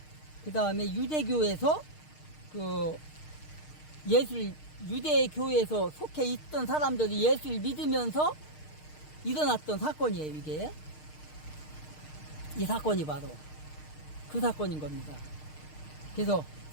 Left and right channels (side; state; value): right; late; 6.5 ms